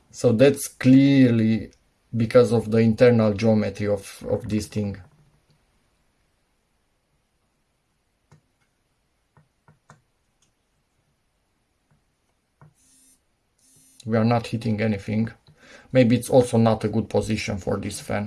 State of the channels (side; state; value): both; identical; correlation 1.00